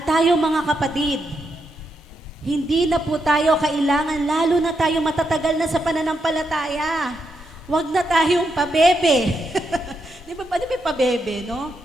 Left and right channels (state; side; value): normal; both; correlation 0.82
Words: tayo mga kapatid, hindi na po tayo kailangan, lalo na tayo matatagal na sa pananampalataya. Huwag na tayong pabebe. Di ba pabebe, no?